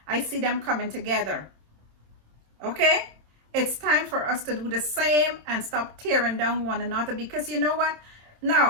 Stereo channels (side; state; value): left; late; 27 ms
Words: I see them coming together. Okay? It's time for us to do the same and stop tearing down one another, because you know what?